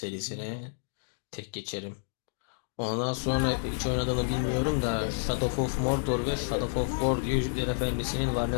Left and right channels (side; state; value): right; silent; digital silence